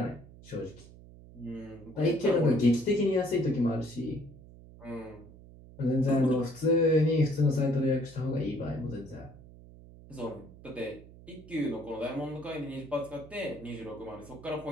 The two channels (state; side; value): noise; right; hum, 19 dB below the sound